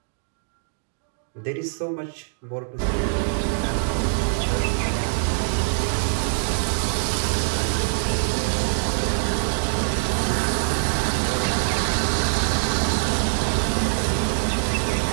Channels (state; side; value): silent; left; digital silence